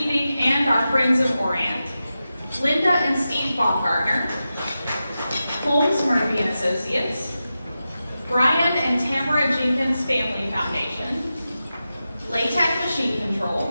and our Friends of Orient, Linda and Steve Baumgartner, Holmes Murphy and Associates, Brian and Tamara Jenkins Family Foundation, Latec Machine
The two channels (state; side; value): inverted; both; correlation -0.92